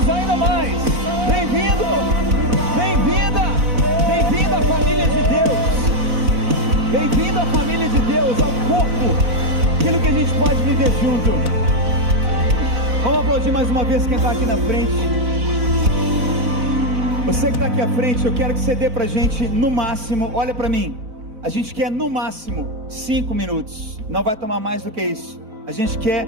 ainda mais. Bem-vindo, bem-vinda, bem-vindo à família de Deus. Bem-vindo à família de Deus, ao corpo, aquilo que a gente pode viver junto. Vamos aplaudir mais uma vez quem está aqui na frente. Você que está aqui à frente, eu quero que você dê pra gente no máximo, olha pra mim, a gente quer no máximo 5 minutos, não vai tomar mais do que isso. A gente quer,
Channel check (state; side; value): late; left; 4.0 ms